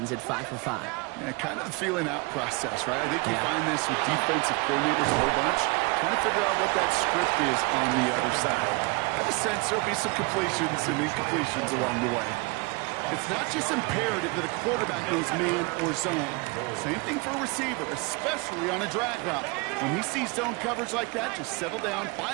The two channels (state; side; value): quieter; left; 27.7 dB